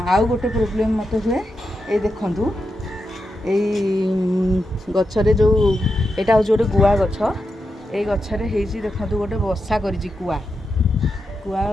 आउ गोटे प्रोब्लेम मत हुए ये देखंतु गछरे जो एटा हो गोटे गुआ गछ। ये गछरे हेजी देखंतु गोटे बसा करिछि कुआ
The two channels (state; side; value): normal; both; correlation 0.87